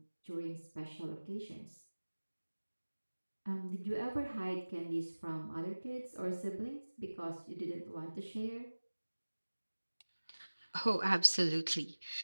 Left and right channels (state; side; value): inverted; both; correlation -1.00